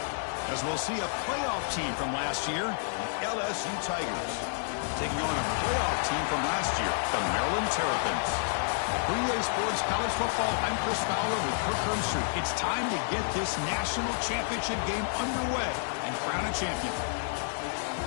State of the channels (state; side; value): silent; right; digital silence